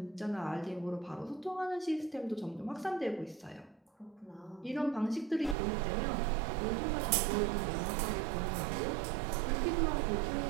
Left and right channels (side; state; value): left; drops out; at 5.6 s